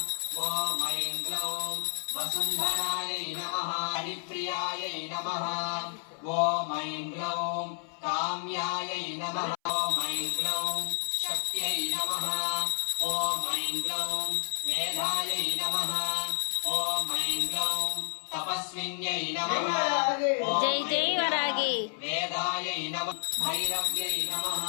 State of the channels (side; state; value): right; silent; 57 dB below the other